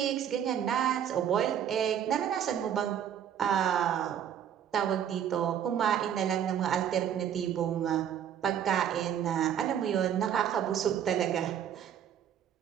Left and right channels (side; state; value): left; quieter; 9.4 dB